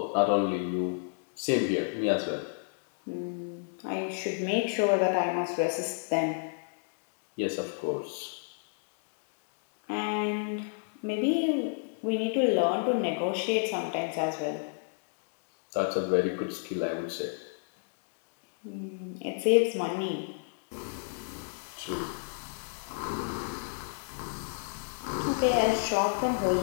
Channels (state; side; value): silent; right; digital silence